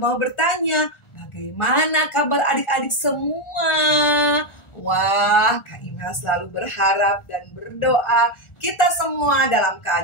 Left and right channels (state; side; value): late; right; 1.4 ms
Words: bertanya, bagaimana kabar adik-adik semua? Wah, Kak Imel selalu berharap dan berdoa kita semua dalam